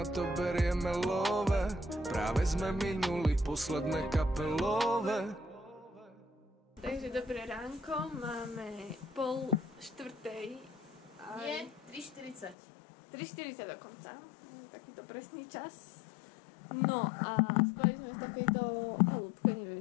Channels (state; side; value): drops out; right; at 12.6 s